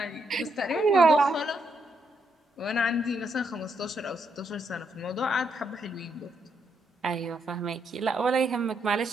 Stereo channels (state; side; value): normal; both; correlation 0.78